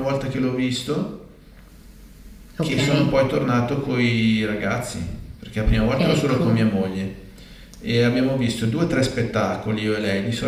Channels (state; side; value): identical; both; correlation 1.00